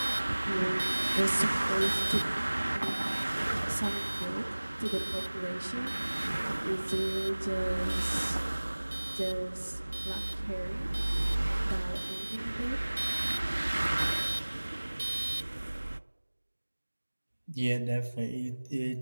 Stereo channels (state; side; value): inverted; both; correlation -1.00